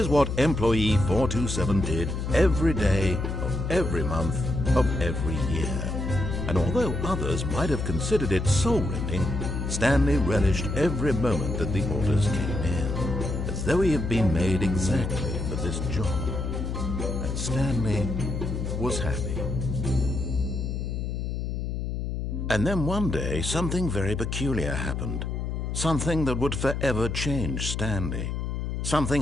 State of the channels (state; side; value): noise; left; hum, 3 dB below the sound